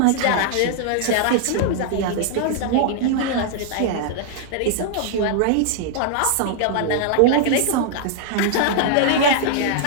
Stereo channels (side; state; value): both; different; correlation -0.01